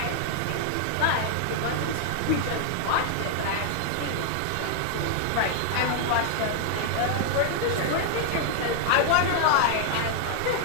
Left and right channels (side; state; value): both; different; correlation 0.00